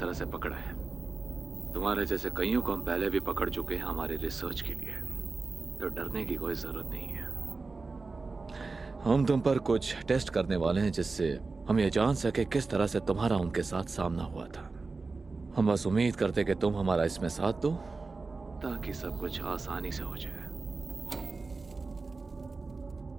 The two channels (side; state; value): left; quieter; 4.0 dB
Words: से पकड़ा है। तुम्हारे जैसे कईयों को हम पहले भी पकड़ चुके हैं हमारी रिसर्च के लिए, तो डरने की कोई जरूरत नहीं है। हम तुम पर कुछ टेस्ट करने वाले हैं जिससे हम ये जान सके किस तरह से तुम्हारा उनके साथ सामना हुआ था। हम बस उम्मीद करते कि तुम हमारा इसमें साथ दो ताकि सब कुछ आसानी से हो जाए।